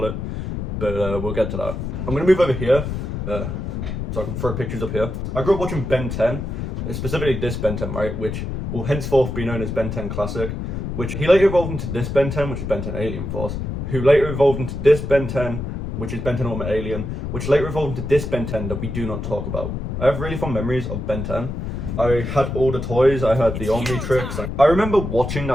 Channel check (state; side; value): noise; left; rumble, 4 dB below the sound